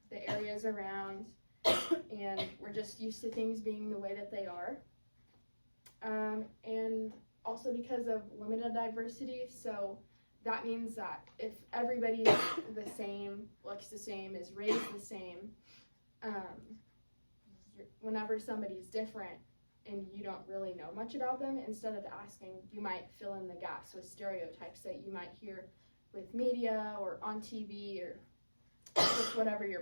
the areas around, and we're just used to things being the way that they are. And also because of limited diversity, so that means that if everybody's the same, looks the same, is raised the same, whenever somebody's different and you don't really know much about them, instead of asking, you might fill in the gaps with stereotypes that you might hear with media or on TV or just whatever your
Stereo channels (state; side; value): inverted; both; correlation -1.00